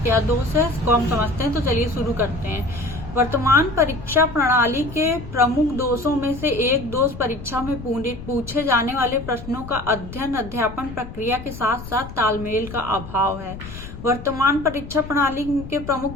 क्या दोष है, इसको हम समझते हैं। तो चलिए शुरू करते हैं। वर्तमान परीक्षा प्रणाली के प्रमुख दोषों में से एक दोष परीक्षा में पूछे जाने वाले प्रश्नों का अध्ययन अध्यापन प्रक्रिया के साथ साथ तालमेल का अभाव है। वर्तमान परीक्षा प्रणाली के प्रमुख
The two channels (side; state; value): left; noise; rumble, 12 dB below the sound